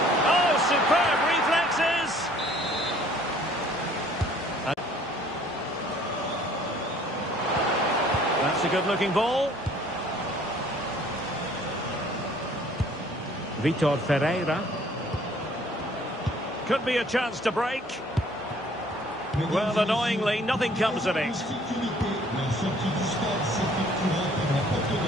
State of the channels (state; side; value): normal; both; correlation 0.57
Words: Oh, superb reflexes! That's a good-looking ball. Vitor Ferreira. Could be a chance to break. Well, annoyingly, nothing comes of it.